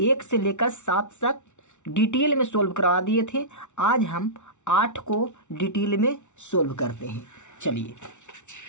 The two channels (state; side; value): late; right; 0.84 ms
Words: 1 से लेकर 7 तक डिटेल में सोल्व करवा दिए थे। आज हम 8 को डिटेल में सोल्व करते हैं। चलिए